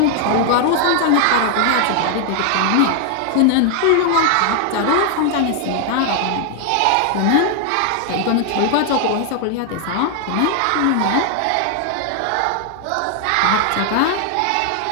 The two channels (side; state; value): both; different; correlation 0.00